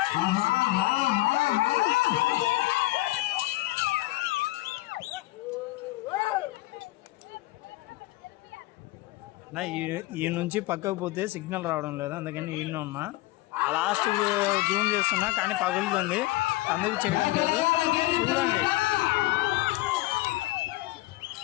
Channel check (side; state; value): right; quieter; 19.1 dB